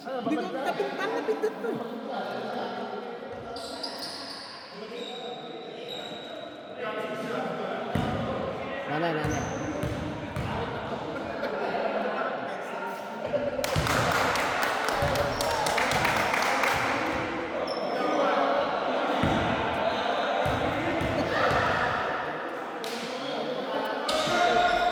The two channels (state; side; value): identical; both; correlation 1.00